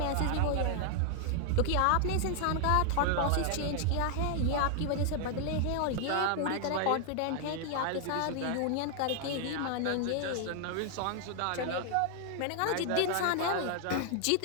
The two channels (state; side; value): different; both; correlation 0.00